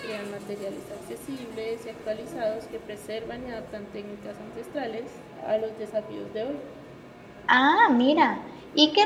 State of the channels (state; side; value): identical; both; correlation 1.00